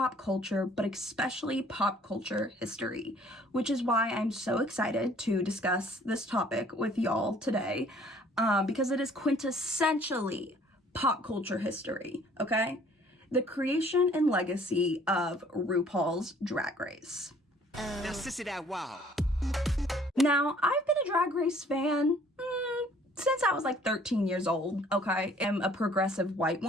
culture, but especially pop culture history, which is why I'm so excited to discuss this topic with y'all today, because it is quintessentially pop culture history, okay? The creation and legacy of RuPaul's Drag Race. Now, sissy that wow. Now, I've been a Drag Race fan since I was like 13 years old, okay? I'm a progressive white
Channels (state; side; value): normal; both; correlation 0.57